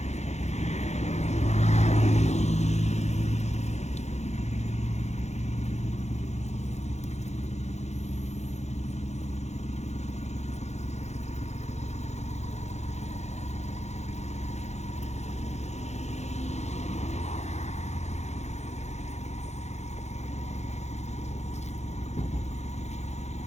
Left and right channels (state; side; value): late; right; 0.33 ms